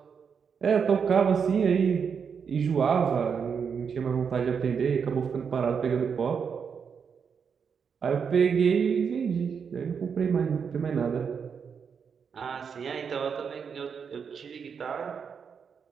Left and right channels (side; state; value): left; quieter; 6.5 dB